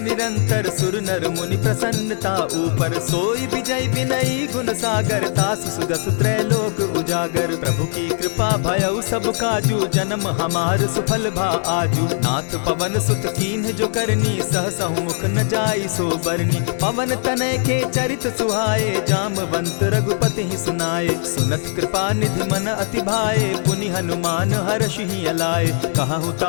निरंतर, सुर नर मुनि प्रसन्नता ऊपर। सोई विजय विनयी गुण सागर, तास सुदस त्रैलोक उजागर। प्रभु की कृपा भयउ सब काजू, जन्म हमार सुफल भा आजू। नाथ पवन सुत कीन्ह जो करनी, सहसहु मुख न जाई सो बरनी। पवन तनय के चरित सुहाए, जामवंत रघुपति ही सुनाए। सुनत कृपा निधि मन अति भाए, पुनि हनुमान हर्ष ही अलाए। कहूँ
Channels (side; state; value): right; silent; 66 dB below the other